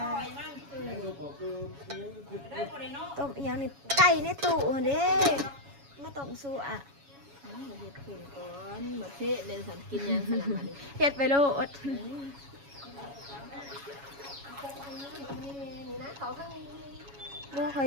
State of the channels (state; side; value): late; left; 7.2 ms